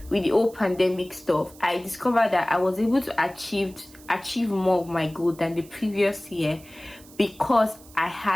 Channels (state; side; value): noise; right; hiss, 23 dB below the sound